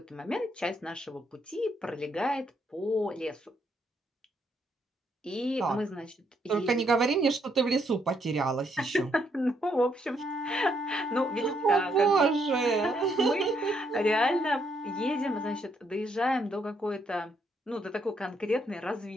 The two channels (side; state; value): both; normal; correlation 0.74